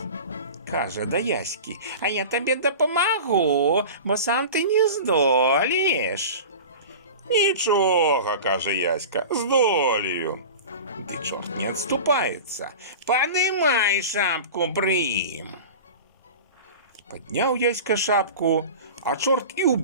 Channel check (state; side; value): inverted; both; correlation -0.33